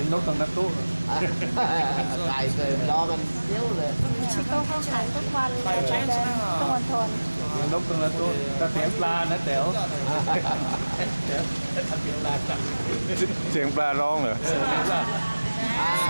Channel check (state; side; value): inverted; both; correlation -1.00